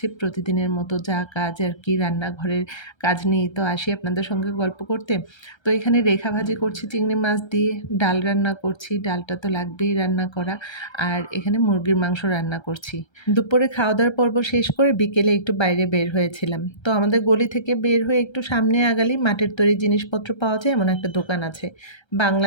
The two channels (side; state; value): right; late; 1.3 ms